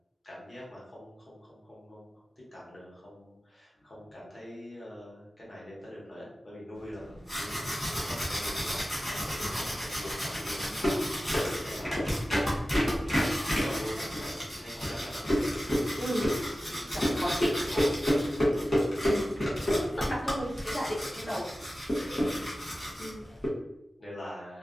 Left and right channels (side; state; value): both; normal; correlation 0.95